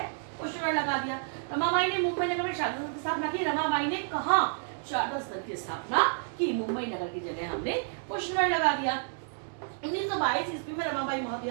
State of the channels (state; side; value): silent; left; digital silence